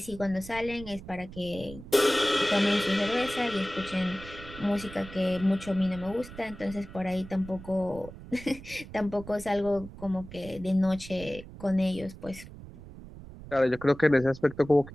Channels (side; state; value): right; noise; rumble, 15 dB below the sound